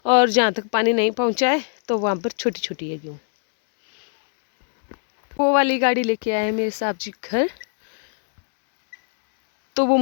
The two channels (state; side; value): silent; right; 65 dB below the other